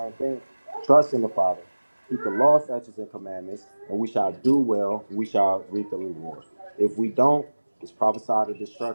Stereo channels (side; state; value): both; inverted; correlation -1.00